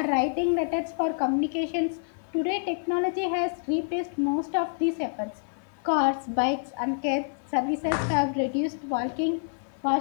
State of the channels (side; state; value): right; silent; digital silence